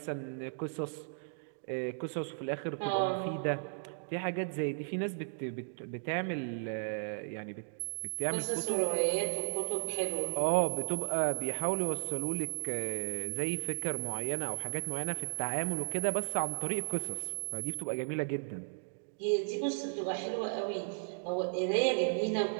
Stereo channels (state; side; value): silent; left; digital silence